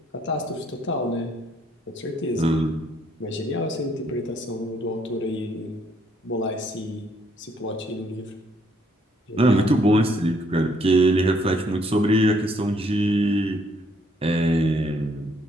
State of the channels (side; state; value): both; normal; correlation 0.68